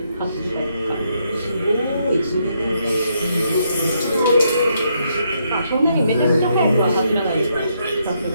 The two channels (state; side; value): inverted; both; correlation -0.76